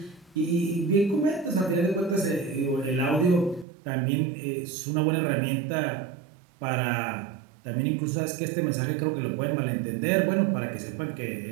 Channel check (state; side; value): drops out; left; at 3.7 s